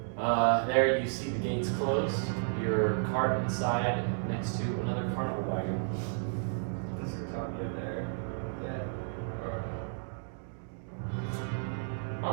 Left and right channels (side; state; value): left; silent; digital silence